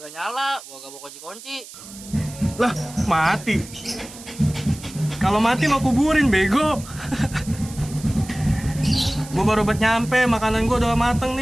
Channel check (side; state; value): right; noise; hiss, 16 dB below the sound